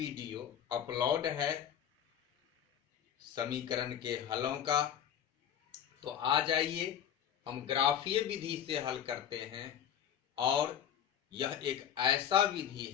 अपलोड है समीकरण के हलों का। तो आ जाइए, हम ग्राफीय विधि से हल करते हैं। और यह एक ऐसा विधि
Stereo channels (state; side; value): quieter; right; 9.4 dB